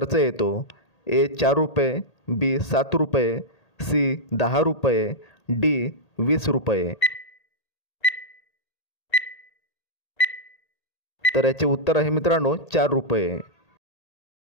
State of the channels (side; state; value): right; late; 1.8 ms